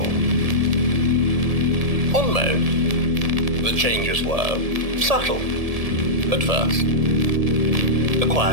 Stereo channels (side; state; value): left; late; 1.7 ms